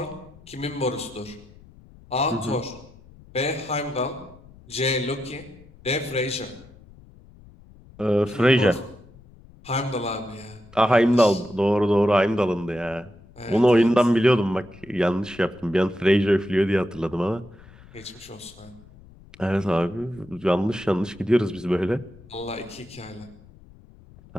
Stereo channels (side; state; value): left; noise; rumble, 23 dB below the sound